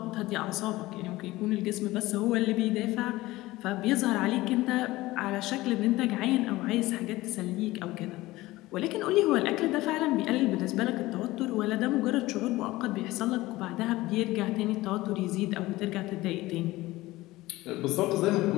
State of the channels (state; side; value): quieter; right; 18.5 dB